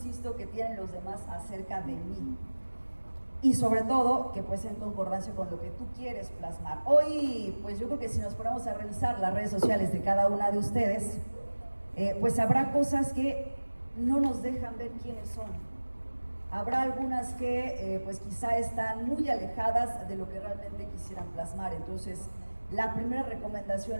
que tienen los demás acerca de mí. Y sobre todo, que pues en concordancia con lo que tú quieres plasmar. Hoy, pues yo creo que si nos ponemos a revisar las redes sociales de cada una de ustedes, pues habrá cosas que no nos dejan ver quiénes son. Habrá algunas que pues quizá están muy alejadas de lo que realmente quisieran plasmar. Entonces, la primera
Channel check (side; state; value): both; inverted; correlation -1.00